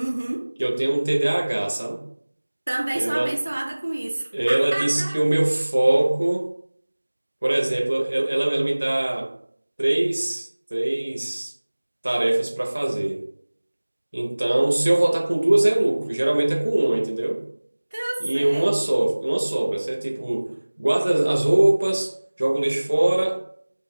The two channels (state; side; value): inverted; both; correlation -1.00